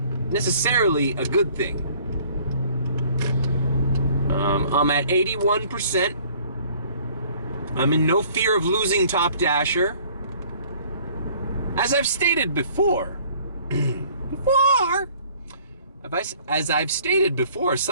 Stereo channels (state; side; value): inverted; both; correlation -0.56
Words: necessarily a good thing. I'm at 81%. I'm in no fear of losing Top Dasher. As I've stated before, as I've stated before,